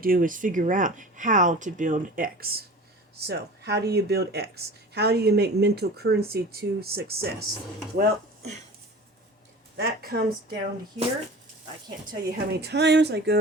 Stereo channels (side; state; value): both; normal; correlation 0.39